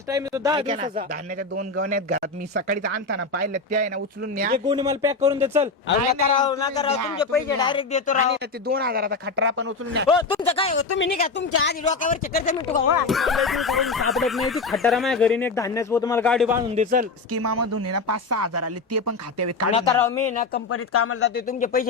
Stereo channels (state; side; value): quieter; right; 4.0 dB